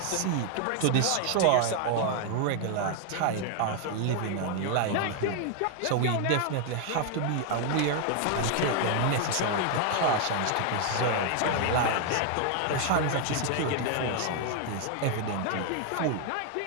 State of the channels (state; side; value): different; both; correlation 0.00